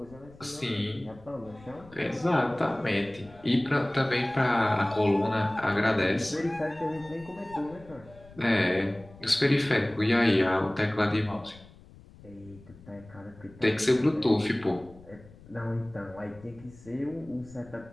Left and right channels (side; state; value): left; noise; rumble, 22 dB below the sound